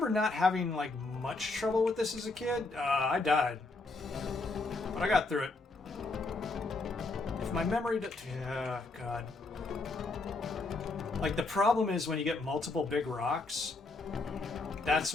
not having like much trouble with this as a kid. I died, but I got through it. If my memory, yeah, God. Like the problem is when you get multiple big rocks, That's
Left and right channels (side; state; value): right; quieter; 3.4 dB